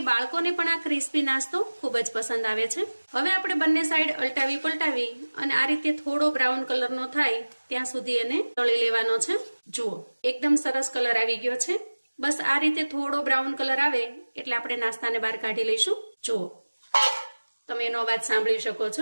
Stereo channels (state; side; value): inverted; both; correlation -1.00